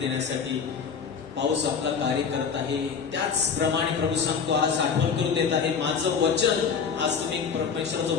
पाऊस आपला कार्य करत आहे. त्याचप्रमाणे प्रभू सांगतो, आज आठवण करून देत आहे, माझं वचन, आज तुम्ही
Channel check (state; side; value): quieter; right; 6.3 dB